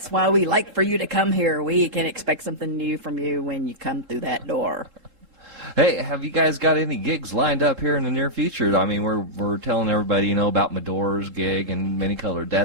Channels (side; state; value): left; late; 3.7 ms